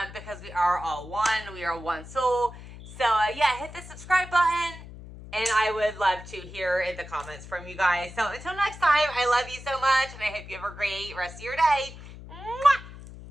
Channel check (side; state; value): left; noise; hum, 15 dB below the sound